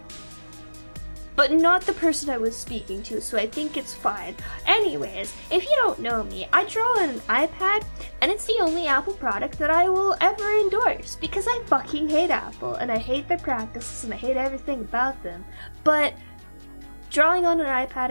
But not the person I was speaking to, so I think it's fine. Anyways, if you don't know me, I draw on an iPad, and it's the only Apple product that I will ever endorse, because I fucking hate Apple, and I hate their practices, and I hate everything about them. But drawing on an iPad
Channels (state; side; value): inverted; both; correlation -1.00